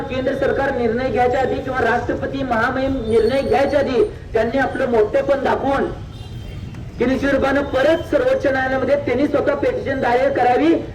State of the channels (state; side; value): identical; both; correlation 1.00